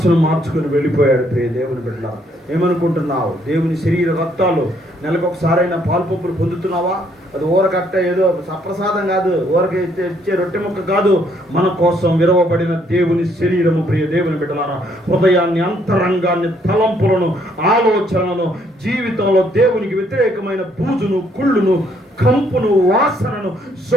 మార్చుకొని వెళ్ళిపోయాడు. ప్రియ దేవుని బిడ్డ, ఏమనుకుంటున్నావు? దేవుని శరీర రక్తాలు నెలకొకసారైనా పాల్పొప్పులు పొందుతున్నావా? అది ఊరకట్ట ఏదో సప్రసాదం కాదు, ఊరక ఇచ్చే రొట్టె ముక్క కాదు, మన కోసం విరవబడిన దేవుని శరీరము. ప్రియ దేవుని బిడ్డలారా, హృదయాన్ని, అంతరంగాన్ని, తలంపులను, ఆలోచనలను, జీవితంలో దేవునికి వ్యతిరేకమైన బూజును, కుళ్ళును, కంపును, వాసనను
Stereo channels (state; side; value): normal; both; correlation 0.68